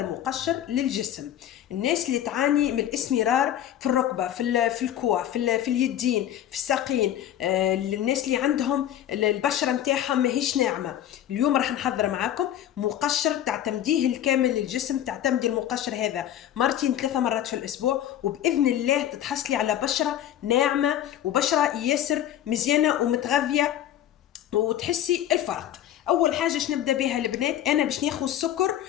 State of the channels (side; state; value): right; quieter; 11.3 dB